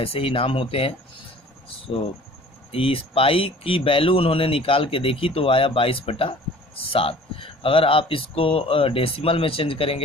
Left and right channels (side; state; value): both; normal; correlation 0.48